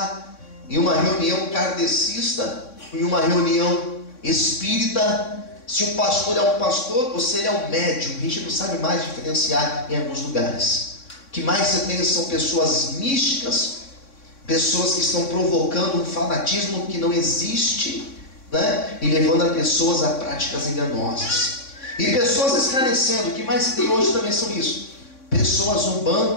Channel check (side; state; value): right; late; 3.6 ms